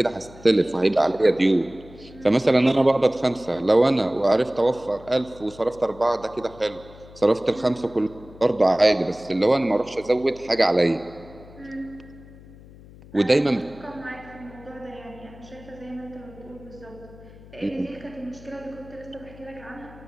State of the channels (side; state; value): left; noise; hum, 20 dB below the sound